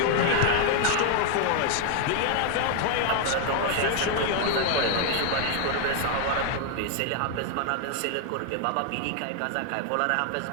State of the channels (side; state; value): both; different; correlation 0.00